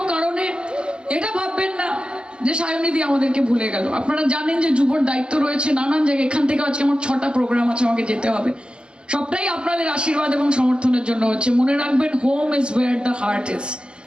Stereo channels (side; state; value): left; late; 0.053 ms